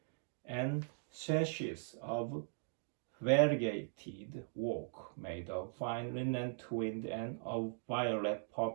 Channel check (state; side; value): silent; left; digital silence